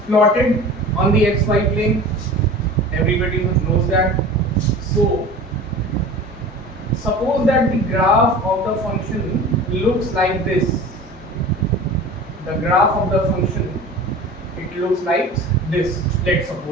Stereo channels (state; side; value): normal; both; correlation 0.38